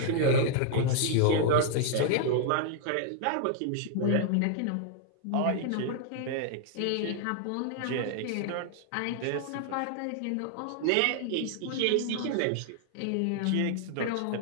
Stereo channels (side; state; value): both; different; correlation 0.00